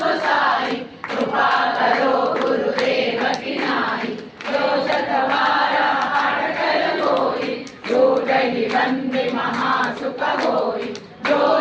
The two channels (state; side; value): identical; both; correlation 1.00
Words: गोसाई कृपा करो गुरुदेव की नाई जो शतवार पाठ कर कोई जो दहि बंदे महासुख होई जो